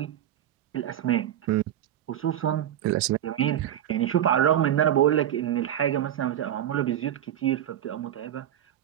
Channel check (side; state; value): left; quieter; 11.2 dB